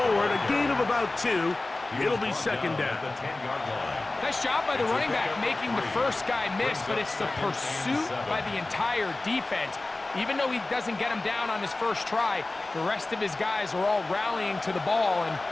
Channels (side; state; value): right; quieter; 3.0 dB